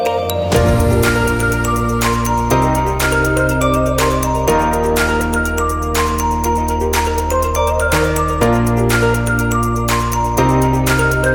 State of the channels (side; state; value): both; identical; correlation 1.00